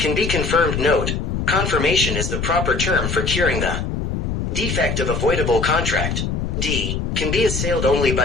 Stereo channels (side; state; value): left; noise; rumble, 2 dB below the sound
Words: be confirmed. Note: confirmation is the proper term for curing the defect of a voidable contract. D. Can be assailed only